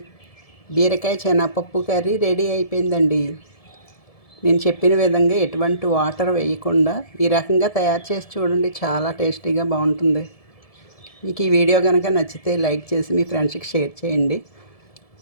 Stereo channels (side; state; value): right; late; 1.7 ms